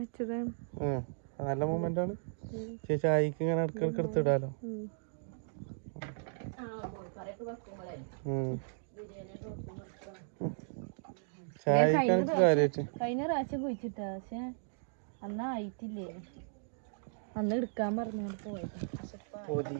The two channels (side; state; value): left; silent; digital silence